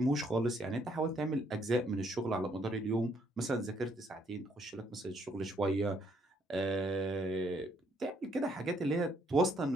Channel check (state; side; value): normal; both; correlation 0.69